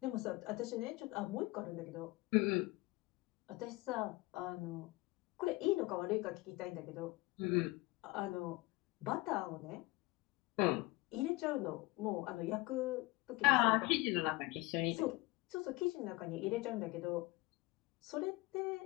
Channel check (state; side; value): quieter; right; 22.1 dB